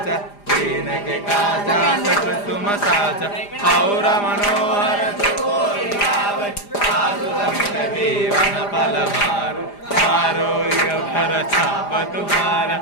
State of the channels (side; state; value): right; late; 4.9 ms